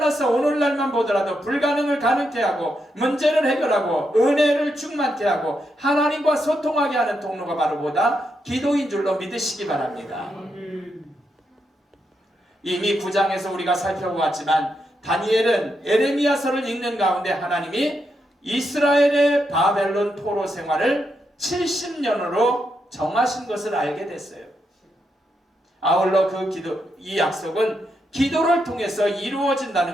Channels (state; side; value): normal; both; correlation 0.82